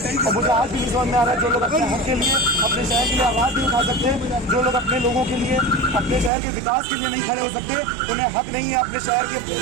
और मुझे आज भी नहीं समझ में आ रहा है जो लोग अपने हक के लिए अपने शहर के लिए आवाज़ नहीं उठा सकते, जो लोग अपने लोगों के लिए अपने शहर के विकास के लिए नहीं खड़े हो सकते, उन्हें हक नहीं है अपने शहर के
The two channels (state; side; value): drops out; left; at 6.3 s